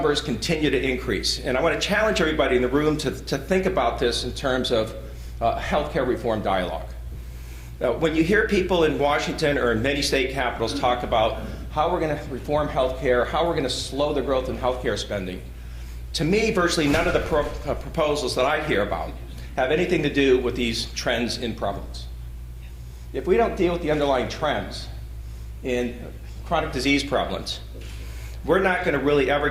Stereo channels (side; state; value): both; identical; correlation 1.00